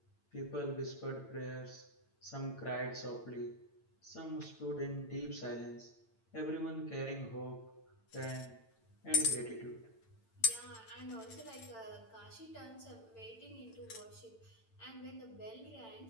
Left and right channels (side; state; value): right; late; 9.0 ms